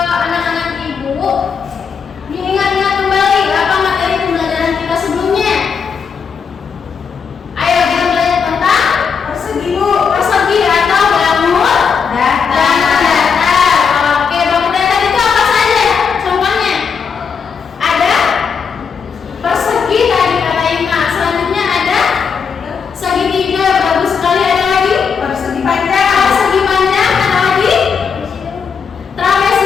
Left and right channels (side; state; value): right; quieter; 6.2 dB